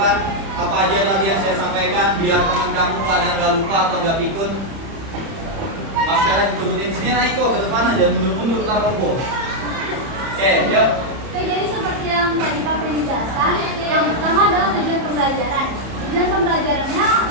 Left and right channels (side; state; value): left; late; 31 ms